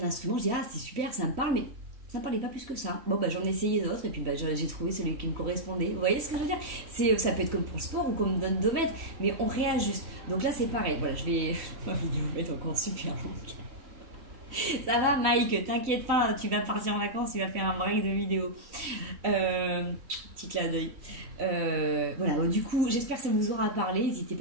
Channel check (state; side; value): late; left; 3.1 ms